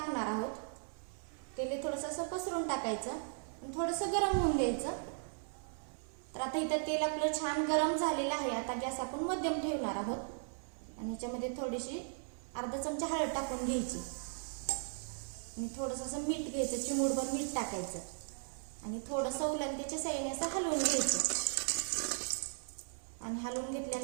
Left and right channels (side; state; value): left; silent; 53 dB below the other